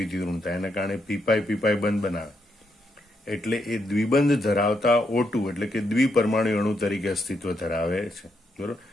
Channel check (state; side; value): normal; both; correlation 0.79